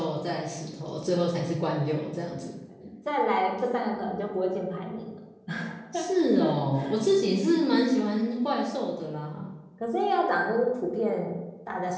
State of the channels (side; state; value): both; identical; correlation 1.00